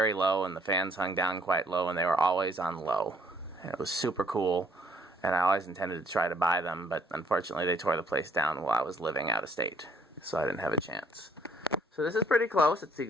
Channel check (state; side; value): normal; both; correlation 0.64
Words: low, and the fans hung down quite low, and they were always on low. And it was super cool, and I always intended to try to buy them, but unfortunately they tore the place down while I was living out of state, so I didn't have a chance. So this is pretty close. It's the